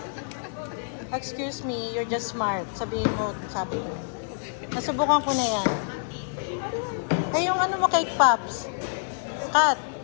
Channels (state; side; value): silent; right; digital silence